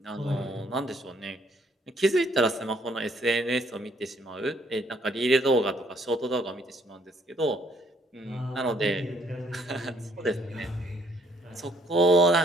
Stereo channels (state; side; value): normal; both; correlation 0.65